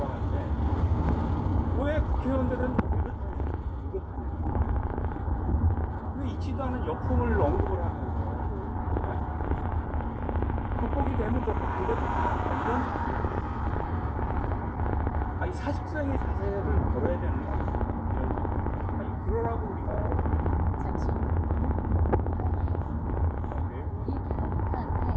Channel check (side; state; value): both; identical; correlation 1.00